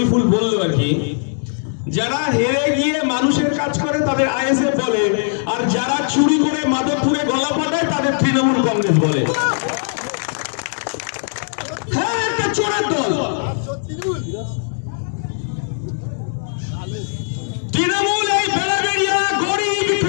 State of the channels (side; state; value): right; silent; digital silence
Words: বলল আর কি, যারা হেরে গিয়ে মানুষের কাজ করে তাদের আইএসএফ বলে, আর যারা চুরি করে মাধবপুরে গলা ফাটায় তাদের তৃণমূল কংগ্রেস বলে। হ্যাঁ, একটা চোরের দল। তৃণমূল এই বেড়াবেড়িয়া গরিব